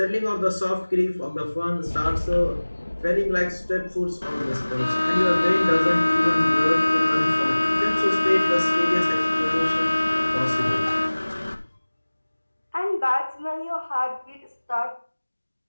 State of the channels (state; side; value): inverted; both; correlation -1.00